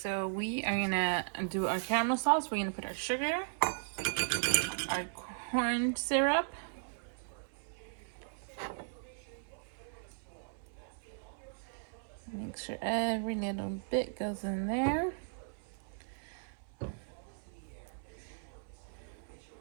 we are gonna do our caramel sauce. We're gonna put our sugar, our corn syrup, make sure every little bit goes in there.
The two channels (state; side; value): silent; left; 53 dB below the other